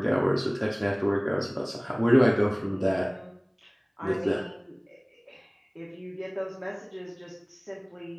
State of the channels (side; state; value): both; identical; correlation 1.00